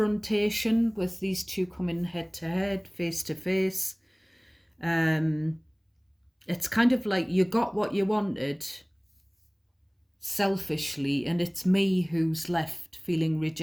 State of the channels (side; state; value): both; identical; correlation 1.00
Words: with these two coming head to head, face to face. It's kind of like you got what you wanted selfishly, and it's me who's left feeling